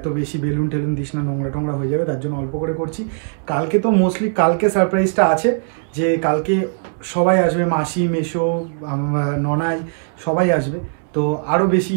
বেশি বেলুন ঠেলুন দিস না, নোংরা টোংরা হয়ে যাবে, তার জন্য অল্প করে করছি। কালকে তো মোস্টলি কালকে সারপ্রাইজটা আছে, যে কালকে সবাই আসবে, মাসি, মেসো, ননাই সবাই আসবে, তো আরও বেশি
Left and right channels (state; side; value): silent; left; 65 dB below the other